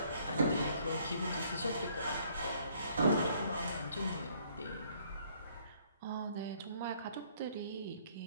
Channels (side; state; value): both; inverted; correlation -0.64